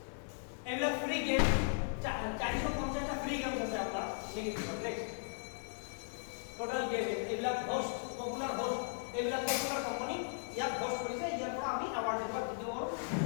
এগুলা ফ্রি গেম 450টা ফ্রি গেমস আছে আপনার নেক্সট টোটাল গেম এগুলা হোস্ট পপুলার হোস্ট এগুলা পপুলার কোম্পানি ইয়াত হোস্ট কৰিছে ইয়াৰ পৰা আমি অ্যাওয়ার্ড দিব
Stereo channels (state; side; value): silent; right; digital silence